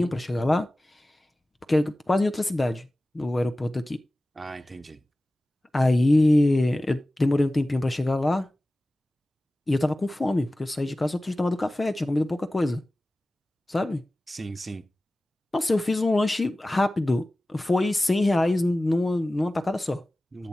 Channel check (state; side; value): normal; both; correlation 0.97